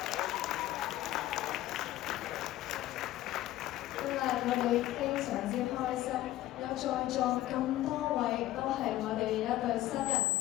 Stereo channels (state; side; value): quieter; right; 14.7 dB